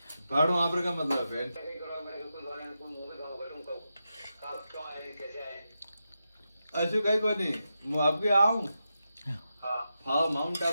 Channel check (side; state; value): both; inverted; correlation -0.88